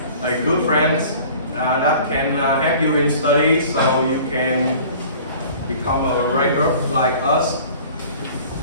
good friends that can help you in study, so you can become a regular like us.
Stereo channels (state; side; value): inverted; both; correlation -0.46